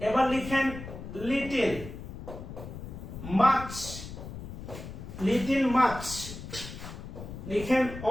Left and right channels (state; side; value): noise; left; rumble, 10 dB below the sound